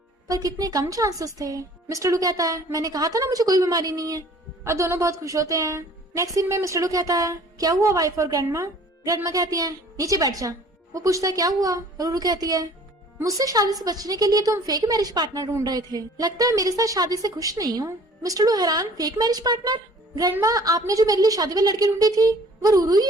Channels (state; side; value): normal; both; correlation 0.51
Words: पर कितने कम चांसेस थे। मिस्टर लू कहता है मैंने कहा था ना मुझे कोई बीमारी नहीं है। और दोनों बहुत खुश होते हैं। नेक्स्ट सीन में मिस्टर लू कहता है क्या हुआ वाइफ और ग्रैंडमा? ग्रैंडमा कहती है नीचे बैठ जा। वो पूछता है क्या हुआ? रूरू कहती है मुझसे शादी से बचने के लिए तुम फेक मैरिज पार्टनर ढूंढ रहे थे, लगता है मेरे साथ शादी से खुश नहीं हो। मिस्टर लू हैरान फेक मैरिज पार्टनर? ग्रैंडमा आपने जो मेरे लिए शादी वाली लड़की ढूंढी थी वो रूरू ही